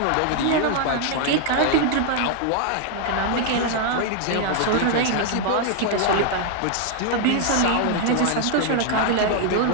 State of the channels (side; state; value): both; different; correlation 0.00